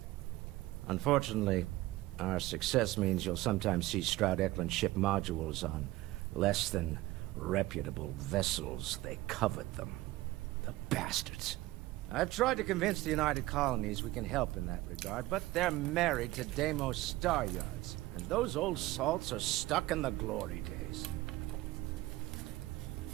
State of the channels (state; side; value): quieter; left; 17.9 dB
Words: Unfortunately, our success means you'll sometimes see Stroud Eklund ship modules on less than reputable vessels. They covet them. The bastards. I've tried to convince the United Colonies we can help in that regard, but they're married to Deimos Star Yards, and those old salts are stuck in the glory days.